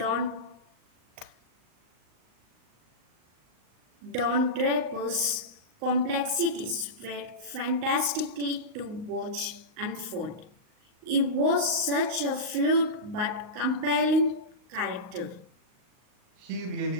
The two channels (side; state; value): left; late; 38 ms